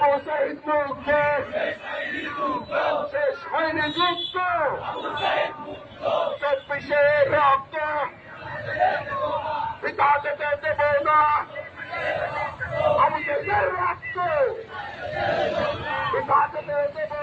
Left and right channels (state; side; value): identical; both; correlation 1.00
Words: সাইদ মুক্তি শেষ হয়নি যুক্ত, 24-এ রক্ত পিতা যেতে দেব না, আমি দেশের রক্ত পিতা যেতে দেব